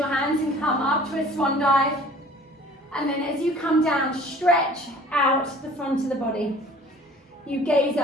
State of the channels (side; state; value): both; normal; correlation 0.50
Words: hands and come up to a swan dive. And then as you come down, stretch out the front of the body. You gaze